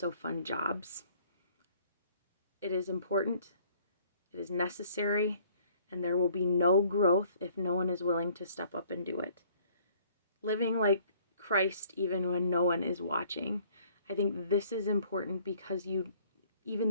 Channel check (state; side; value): inverted; both; correlation -0.59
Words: fun jobs. It is important, it is necessary, and there will be no growth if no one is willing to step up and do it. Living like Christ even when no one is watching. I think this is important because